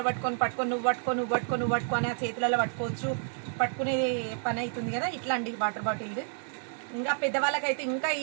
పట్టుకొని నువ్వు పట్టుకో అని ఆ చేతులలో పట్టుకోవచ్చు. పట్టుకునే పని అవుతుంది కదా. ఇట్లా అండి వాటర్ బాటిల్. ఇంకా పెద్దవాళ్ళకైతే ఇంకా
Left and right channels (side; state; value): left; silent; 58 dB below the other